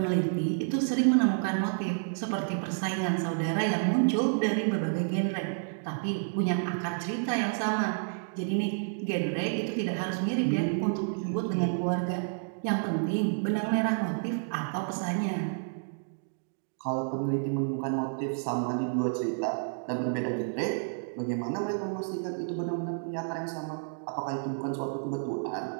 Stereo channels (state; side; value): silent; left; digital silence